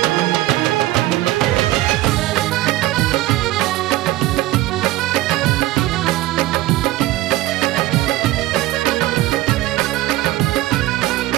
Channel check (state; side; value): quieter; left; 16.8 dB